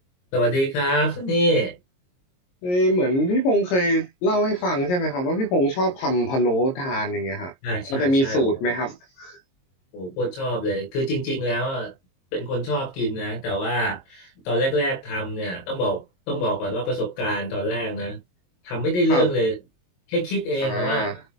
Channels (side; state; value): right; late; 22 ms